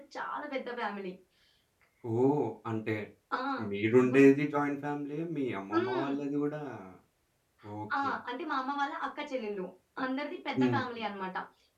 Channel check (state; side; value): identical; both; correlation 1.00